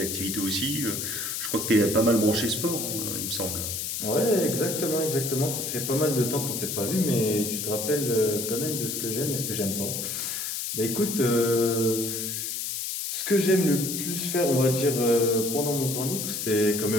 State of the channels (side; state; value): left; noise; hiss, 3 dB below the sound